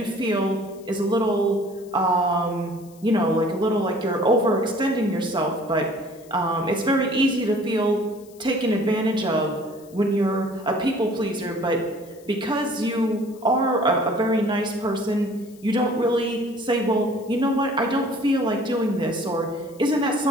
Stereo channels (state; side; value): noise; left; hiss, 26 dB below the sound